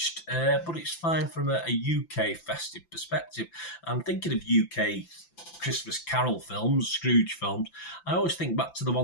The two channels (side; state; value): right; late; 5.9 ms